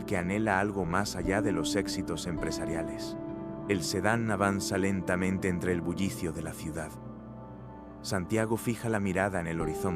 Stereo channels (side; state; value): both; identical; correlation 1.00